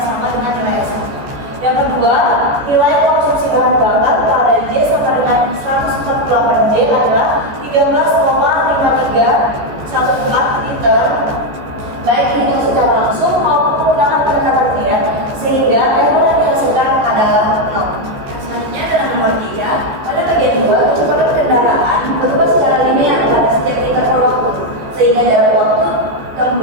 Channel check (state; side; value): late; left; 14 ms